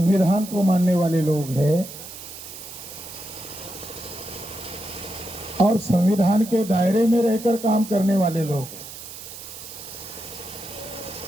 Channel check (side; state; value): right; noise; hiss, 13 dB below the sound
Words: को मानने वाले लोग हैं और संविधान के दायरे में रहकर काम करने वाले लोग हैं।